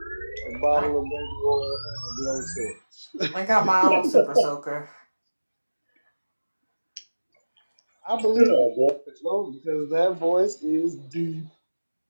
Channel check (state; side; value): inverted; both; correlation -1.00